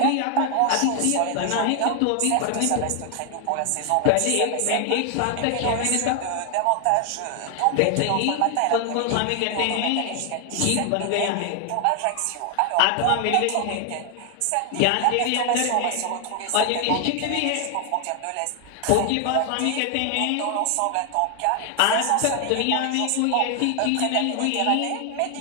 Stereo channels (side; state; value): both; different; correlation 0.00